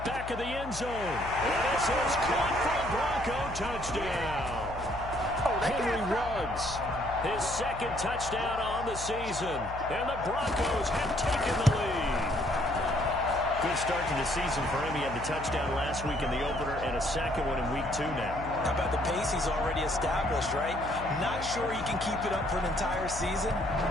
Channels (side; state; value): left; noise; hum, 11 dB below the sound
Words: Back of the end zone. And this is caught for a Bronco touchdown. Henry Ruggs, his 2nd touchdown on the season, and the Broncos have taken the lead. Good start to the season for him. He had the touchdown last week in the opener and a 2nd one in week 2 now. How about the pace he's already established, right? Not sure he can keep it up for an entire season,